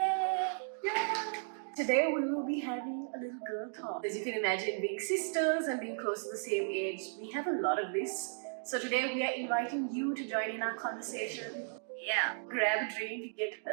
Today we will be having a little girl talk. As you can imagine, being sisters and being close to the same age, we have a lot of this. So today we are inviting you to join in our conversation. Yeah. Grab a drink, get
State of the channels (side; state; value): left; silent; digital silence